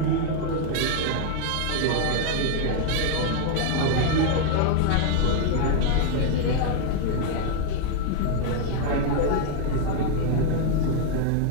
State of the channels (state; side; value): different; both; correlation 0.00